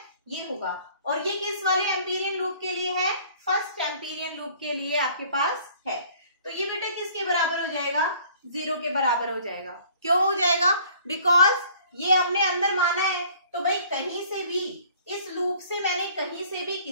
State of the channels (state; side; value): inverted; both; correlation -0.54